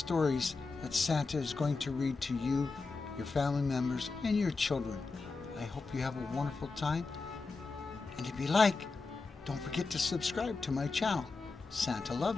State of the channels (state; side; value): quieter; right; 4.1 dB